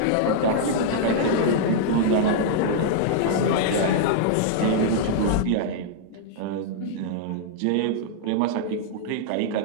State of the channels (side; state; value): both; different; correlation -0.01